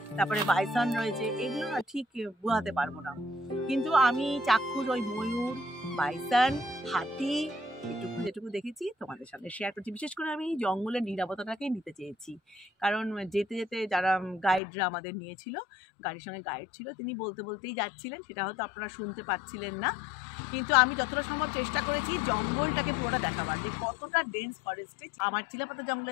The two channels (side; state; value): right; drops out; at 14.6 s